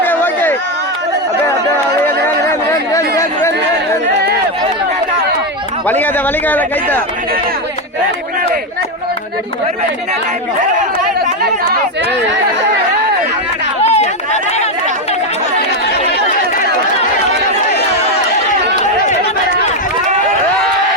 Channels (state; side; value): normal; both; correlation 0.07